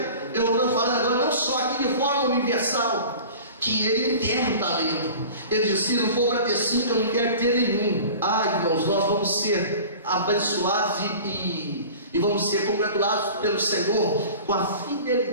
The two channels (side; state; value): both; inverted; correlation -0.40